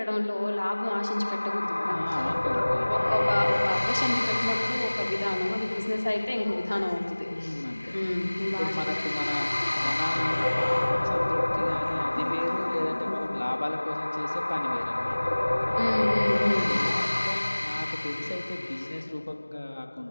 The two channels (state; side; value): inverted; both; correlation -1.00